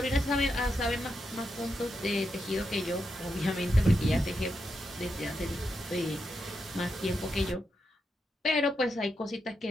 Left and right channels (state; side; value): normal; both; correlation 0.85